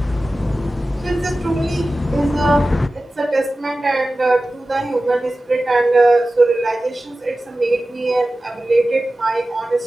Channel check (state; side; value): normal; both; correlation 0.95